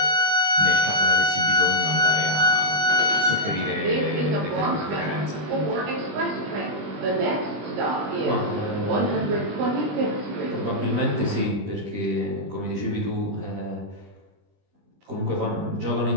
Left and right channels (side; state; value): left; late; 20 ms